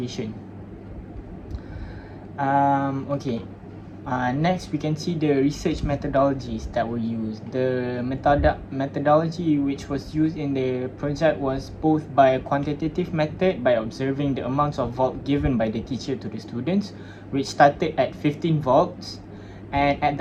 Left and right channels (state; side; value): identical; both; correlation 1.00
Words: Okay. Next, we can see the research methodologies that were used. The methodology which was used in the project was both by a quantitative method, by observing the amounts of volt given by the teacher to the students, which started at 15 volts, and at